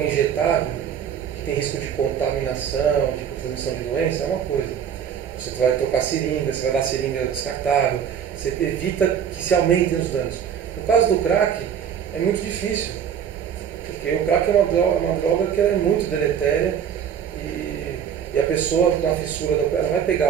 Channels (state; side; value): quieter; left; 8.3 dB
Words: injetável, que tem risco de contaminação, de transmissão de doença, é uma coisa. Você vai trocar seringa, você vai dar seringa descartável, você evita que se aumentem os danos. No caso do crack, é muito difícil. Porque o crack é uma droga que ela é muito deletéria e a pessoa com a fissura, ela vai